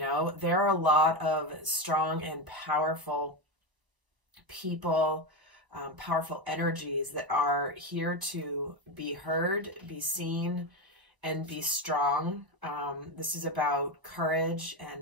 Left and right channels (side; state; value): left; late; 1.0 ms